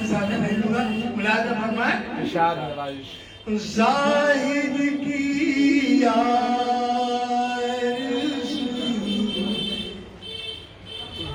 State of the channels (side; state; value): both; identical; correlation 1.00